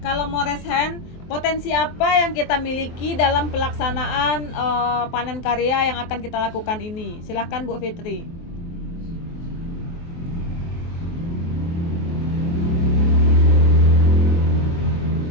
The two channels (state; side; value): late; right; 23 ms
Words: mau raise hand, potensi apa yang kita miliki dalam pelaksanaan panen karya yang akan kita lakukan ini? Silahkan Bu Fitri.